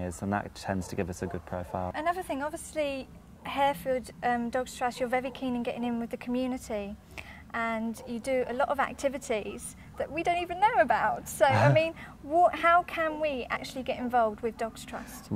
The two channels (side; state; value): both; identical; correlation 1.00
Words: and that tends to give us a good profile. Another thing, obviously, Harefield Dogs Trust, you're very keen in getting in with the community, and you do a lot of activities that we don't even know about. So, I mean, how can we actually get involved with Dogs Trust?